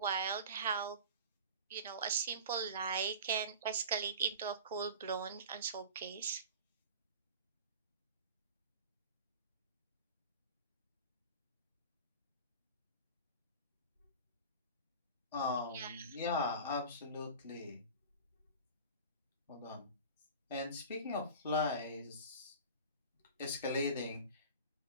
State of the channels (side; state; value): both; inverted; correlation -0.36